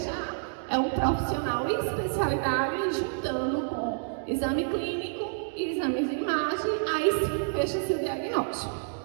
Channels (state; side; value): silent; left; digital silence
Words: é um profissional em especialidade juntando com exame clínico e exames de imagem, aí sim fecha-se o diagnóstico.